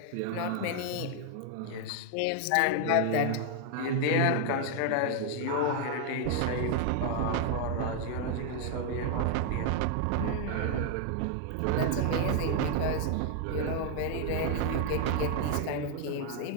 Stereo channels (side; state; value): both; different; correlation 0.00